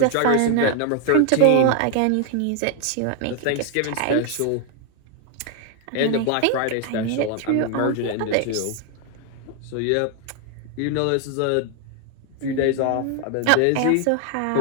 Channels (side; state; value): both; different; correlation 0.00